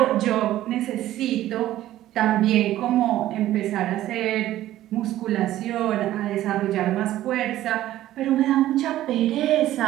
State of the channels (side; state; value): left; quieter; 14.0 dB